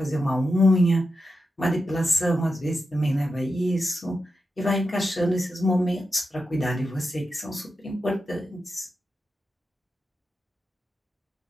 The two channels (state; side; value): normal; both; correlation 0.89